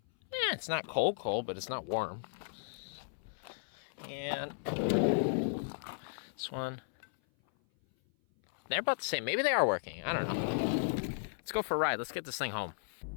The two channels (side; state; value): right; silent; 54 dB below the other